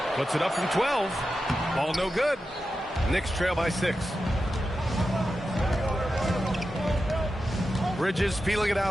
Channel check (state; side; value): normal; both; correlation 0.91